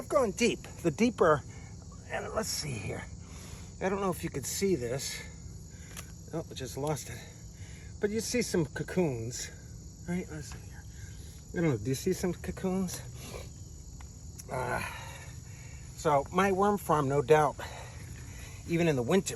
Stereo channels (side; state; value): both; identical; correlation 1.00